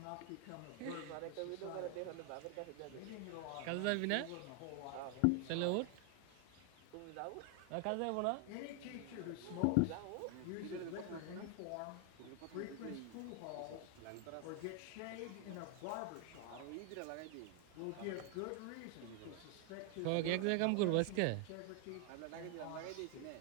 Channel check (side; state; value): both; different; correlation 0.00